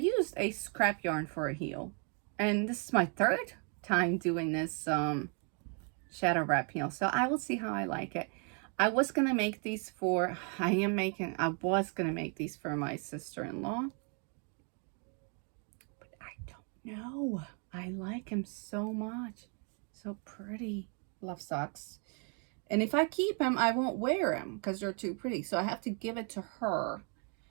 a scrap yarn for a heel, and this is my 3rd time doing this shadow wrap heel, so I will see how I like it. I was gonna make these for my sister-in-law, but I don't know. I like him so much. So pretty. Love socks. And if I keep them, I won't wear them because they're too pretty. So I have to give it to her.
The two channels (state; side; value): quieter; left; 38.7 dB